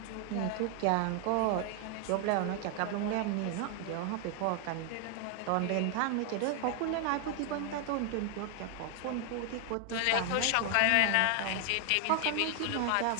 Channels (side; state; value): both; different; correlation 0.00